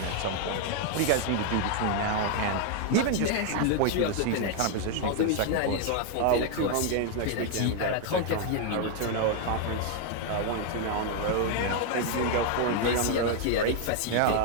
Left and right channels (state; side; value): different; both; correlation 0.00